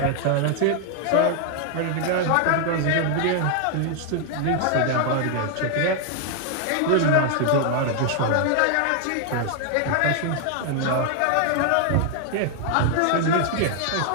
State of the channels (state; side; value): different; both; correlation 0.00